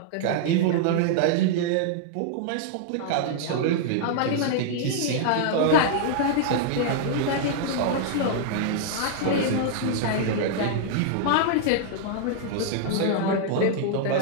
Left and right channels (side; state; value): both; different; correlation -0.01